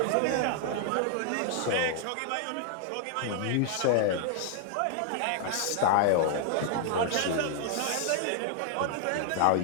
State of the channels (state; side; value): different; both; correlation 0.00